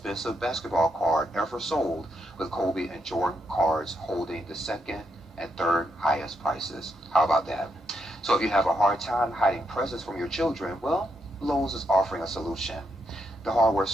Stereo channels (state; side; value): normal; both; correlation 0.80